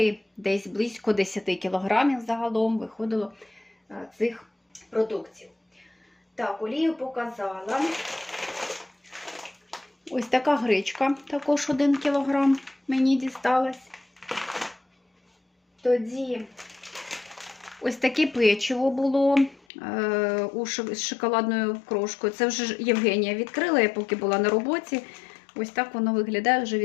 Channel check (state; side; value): drops out; right; at 19.6 s